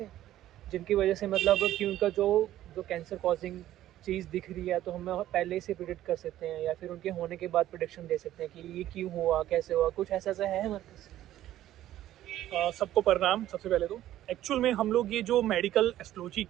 हैं जिनकी वजह से मतलब कि उनका जो जो कैंसर कॉजिंग चीज़ दिख रही है तो हम पहले से प्रिडिक्ट कर सकते हैं, या फिर उनके होने के बाद प्रिडिक्शन दे सकते हैं कि ये क्यों हुआ, कैसे हुआ, कुछ ऐसा ऐसा है हमारे पास। सबको प्रणाम। सबसे पहले तो एक्चुअल में हम लोग ये जो मेडिकल एस्ट्रोलॉजी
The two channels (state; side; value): quieter; left; 13.3 dB